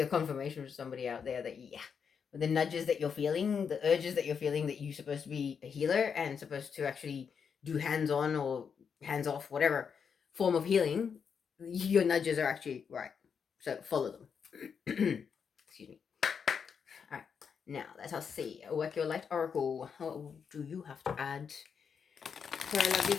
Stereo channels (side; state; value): right; quieter; 6.6 dB